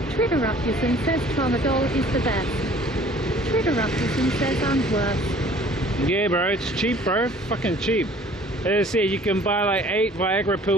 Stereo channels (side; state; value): both; normal; correlation 0.52